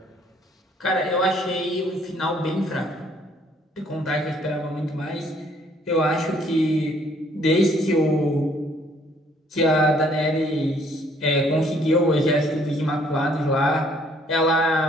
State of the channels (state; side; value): normal; both; correlation 0.63